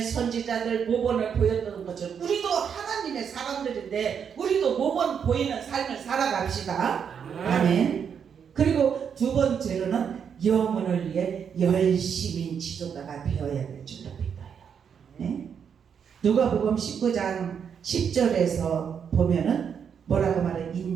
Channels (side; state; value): left; quieter; 7.3 dB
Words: 선지자들 모본을 보였던 것처럼 우리도 하나님의 사람들인데 우리도 모본 보이는 삶을 살아갑시다. 아멘. 그리고 두 번째로는 영혼을 위해 열심인 지도자가 되어야 될 줄로 믿어요. 네? 누가복음 19장 10절에서 보면은 뭐라고 말해?